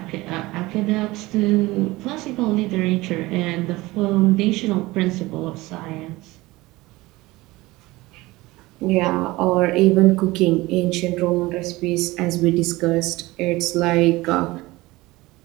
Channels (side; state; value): left; quieter; 20.2 dB